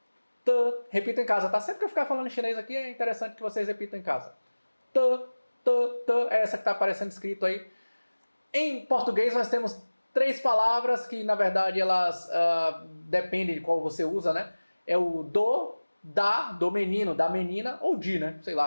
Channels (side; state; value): both; inverted; correlation -1.00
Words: Repito em casa, tá? Sempre que eu ficar falando em chinês aqui, é interessante que vocês repitam em casa. T, é essa que está aparecendo escrito aí. Em português nós temos 3 palavras que, na verdade, elas dependem de qual você usa, né? É o do, da, do menino, da menina, ou de, né? Sei